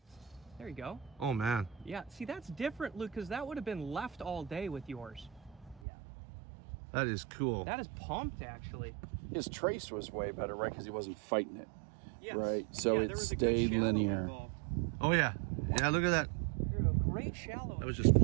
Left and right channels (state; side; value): drops out; left; at 5.8 s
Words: There you go. Oh man. Yeah. See, that's different, Luke, because that would have been left all day with yours. Yeah. That is cool. That is pumped, actually. His trace was way better, right? Because he wasn't fighting it. Yes. Right, so Yeah, it there was a good stayed shallow linear. involved. Oh yeah. Yeah, look at that. Great shallow. That was just